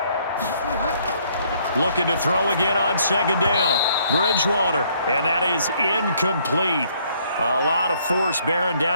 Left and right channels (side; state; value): both; inverted; correlation -0.66